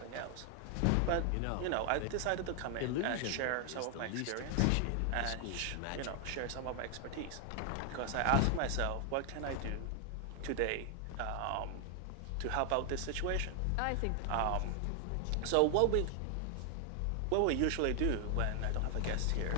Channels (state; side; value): different; both; correlation 0.00